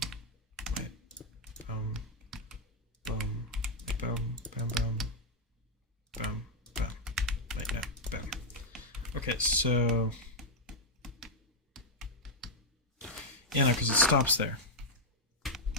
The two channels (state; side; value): normal; both; correlation -0.04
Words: Wait. Boom, boom, boom, boom, boom. Boom, boom. Wait, no, boom. Okay, so yeah, no, because it stops there.